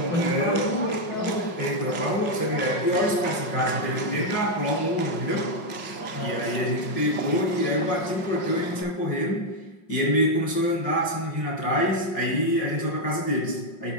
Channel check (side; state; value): right; late; 5.5 ms